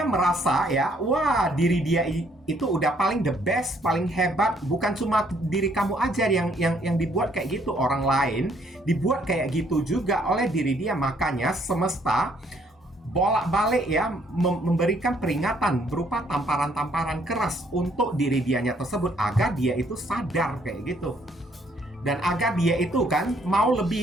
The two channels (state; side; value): normal; both; correlation 0.67